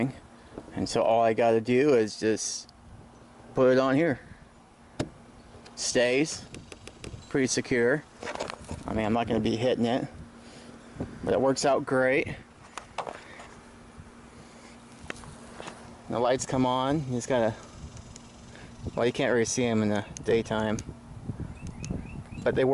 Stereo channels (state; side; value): identical; both; correlation 1.00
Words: and so all I got to do is just put it on here. Stays pretty secure. I mean, I'm not going to be hitting it, but it works out great. The lights come on. You just gotta, well, you can't really see them in the daytime, but they